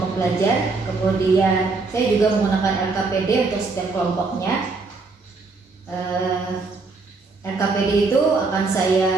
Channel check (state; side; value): quieter; left; 4.0 dB